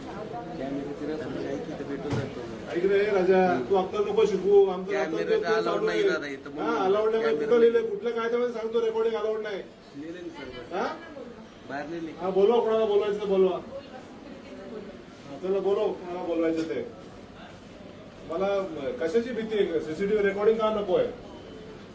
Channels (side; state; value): both; identical; correlation 1.00